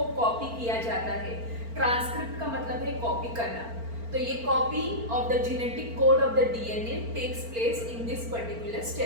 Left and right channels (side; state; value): left; late; 4.4 ms